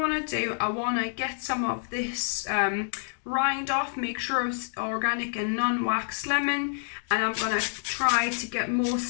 to do, I want to get some of this rind off, make sure it's organic and non-waxed lemon, and I'm going to try to get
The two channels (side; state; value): right; silent; digital silence